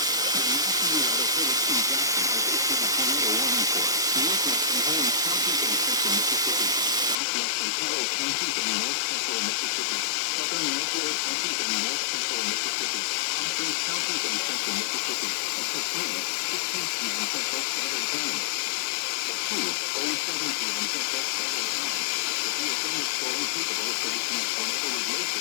Philippine Jackson has issued a tornado warning for northwestern Holmes County in central Mississippi, southwestern Carroll County in north central Mississippi, southern Nuclear County in north central Mississippi, Hopkins County in central Mississippi, until 3:15 p.m. Central Standard Time. At 2:07 p.m. Central Standard Time, a severe thunderstorm capable of producing a tornado is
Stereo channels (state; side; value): drops out; right; at 7.2 s